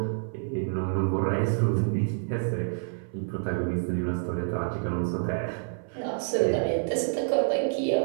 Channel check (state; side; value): silent; left; 59 dB below the other